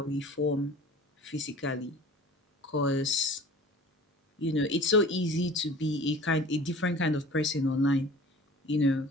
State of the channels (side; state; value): both; normal; correlation 0.43